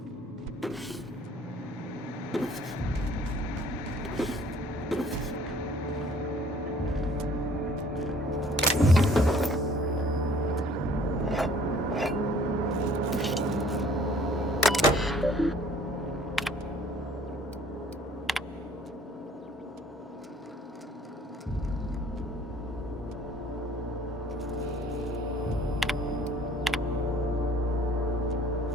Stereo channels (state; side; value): normal; both; correlation 0.55